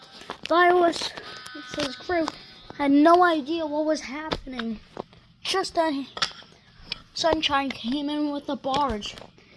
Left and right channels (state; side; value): identical; both; correlation 1.00